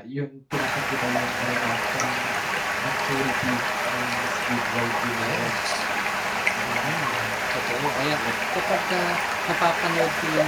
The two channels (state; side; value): identical; both; correlation 1.00